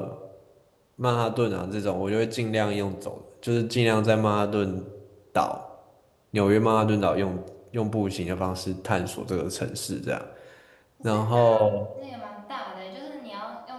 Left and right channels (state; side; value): identical; both; correlation 1.00